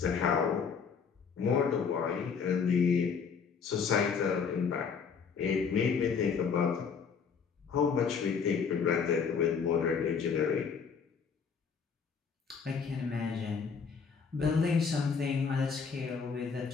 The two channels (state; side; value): quieter; right; 6.0 dB